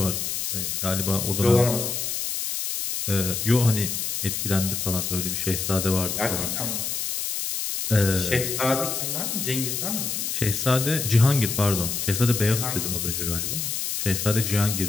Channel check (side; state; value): left; noise; hiss, 2 dB below the sound